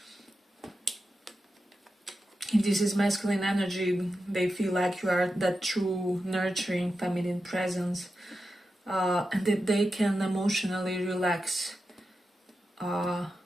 If this is masculine energy, they feel like you are that true nurturing feminine presence, and that they can emotionally relax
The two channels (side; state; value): both; normal; correlation 0.90